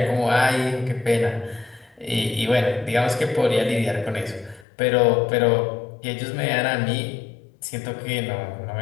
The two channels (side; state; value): right; drops out; at 4.7 s